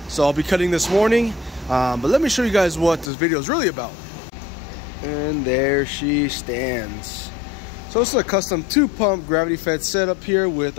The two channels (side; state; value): right; drops out; at 3.1 s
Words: So, I'll be cutting this morning. But let me show you guys what this video is really about. And there she stands. So, this is a custom 2-pump gravity-fed setup here with